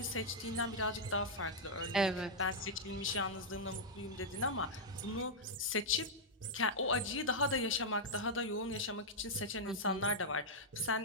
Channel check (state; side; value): normal; both; correlation -0.06